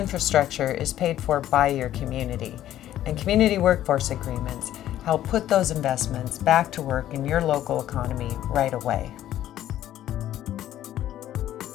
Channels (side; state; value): right; quieter; 12.5 dB